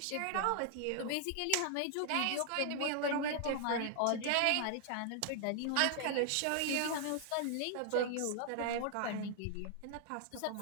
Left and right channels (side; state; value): both; different; correlation 0.00